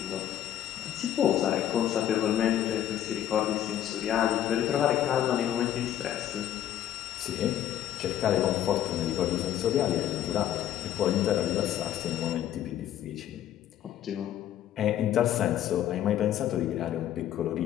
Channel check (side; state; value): right; quieter; 11.5 dB